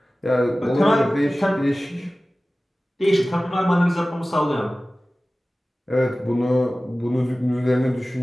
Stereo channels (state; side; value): normal; both; correlation 0.97